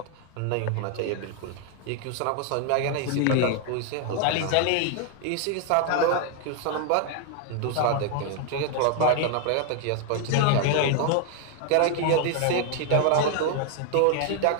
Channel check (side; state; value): both; different; correlation 0.00